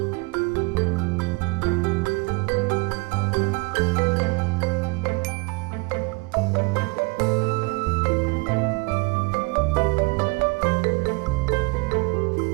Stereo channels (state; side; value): quieter; left; 28.2 dB